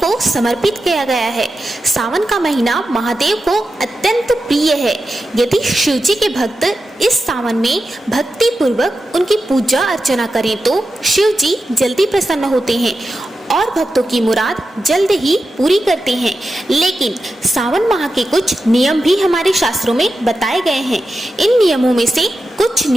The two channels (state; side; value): normal; both; correlation 0.90